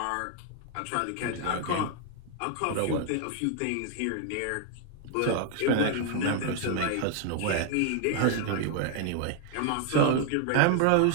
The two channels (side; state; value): both; different; correlation 0.00